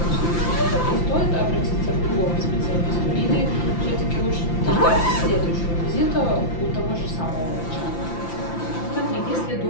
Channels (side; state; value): right; late; 5.9 ms